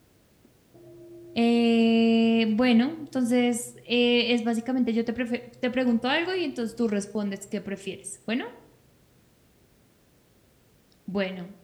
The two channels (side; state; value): both; identical; correlation 1.00